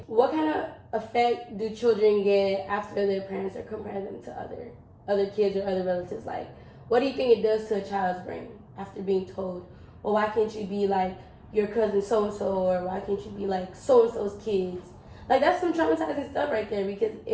What kind of effect do children get after their parents are comparing them to other kids or other relatives? Like, what do you think it does to a child's brain after being told, well, why can't you be like your cousin so-and-so, or why can't you be like so-and-so's kids? Like, that's some traumatizing stuff right there, because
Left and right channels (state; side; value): identical; both; correlation 1.00